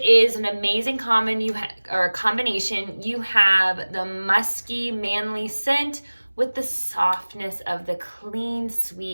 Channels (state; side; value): inverted; both; correlation -1.00